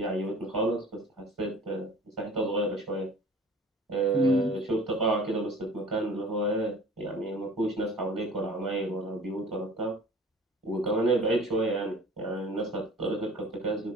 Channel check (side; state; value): both; normal; correlation 0.45